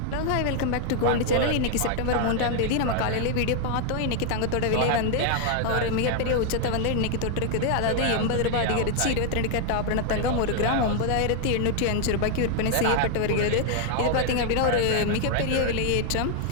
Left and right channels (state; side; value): different; both; correlation 0.00